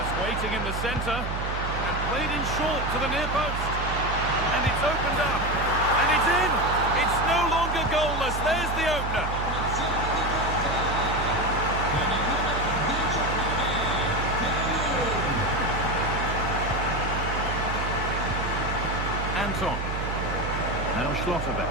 waiting in the centre and played in short to the near post. And it's opened up, and it's in! It's no longer goalless, there's the opener! Anton. Now Schlotterbeck.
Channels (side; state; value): right; noise; hum, 4 dB below the sound